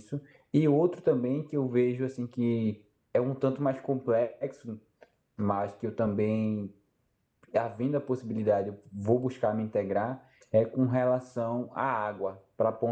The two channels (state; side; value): identical; both; correlation 1.00